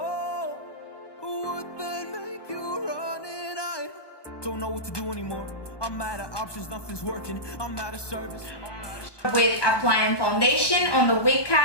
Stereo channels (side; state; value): right; late; 1.2 ms